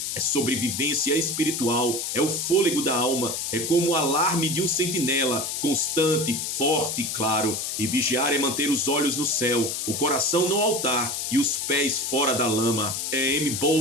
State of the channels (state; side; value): noise; left; hiss, 3 dB below the sound